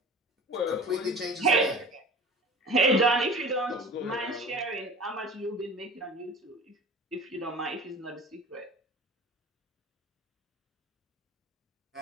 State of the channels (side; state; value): both; normal; correlation 0.39